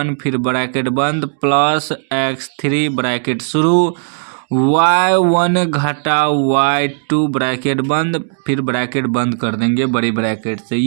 फिर ब्रैकेट बंद प्लस x3 ब्रैकेट शुरू, y1 घटा y2 ब्रैकेट बंद फिर ब्रैकेट बंद कर देंगे बड़ी ब्रैकेट से।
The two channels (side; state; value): left; silent; digital silence